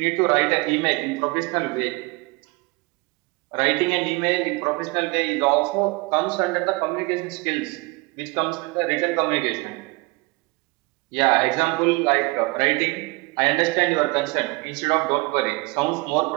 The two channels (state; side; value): quieter; left; 26.1 dB